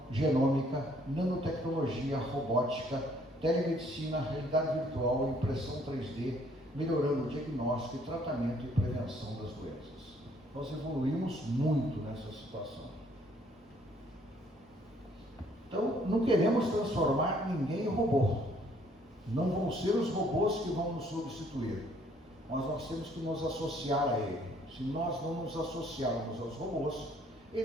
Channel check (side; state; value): both; normal; correlation 0.63